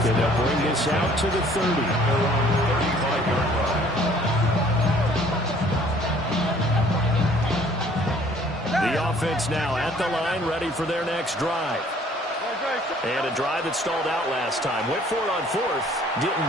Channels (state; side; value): normal; both; correlation 0.57